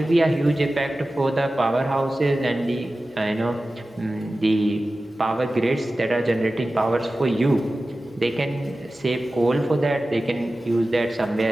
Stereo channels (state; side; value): normal; both; correlation 0.95